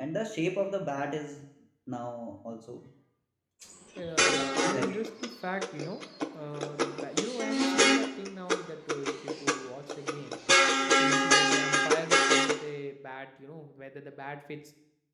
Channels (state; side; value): identical; both; correlation 1.00